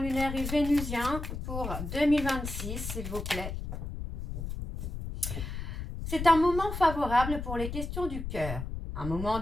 et vénusien pour 2026, s'il vous plaît. C'est un moment favorable pour les questions du cœur, un moment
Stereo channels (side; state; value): left; noise; rumble, 6 dB below the sound